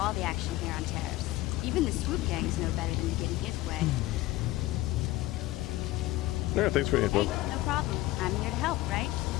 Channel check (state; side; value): quieter; right; 17.3 dB